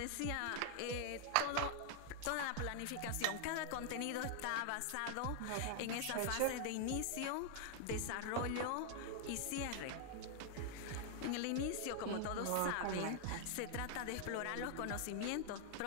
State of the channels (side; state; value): both; different; correlation 0.00